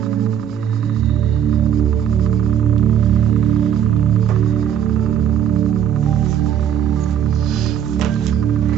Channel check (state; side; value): quieter; left; 9.4 dB